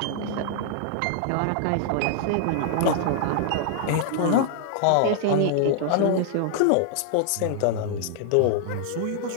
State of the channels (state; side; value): different; both; correlation -0.01